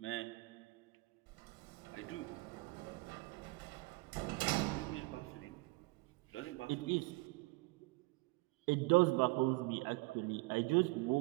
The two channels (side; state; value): left; quieter; 25.2 dB